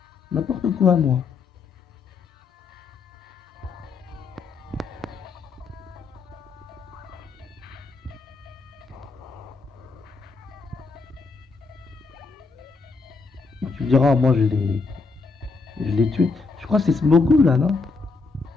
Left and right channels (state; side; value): quieter; right; 4.3 dB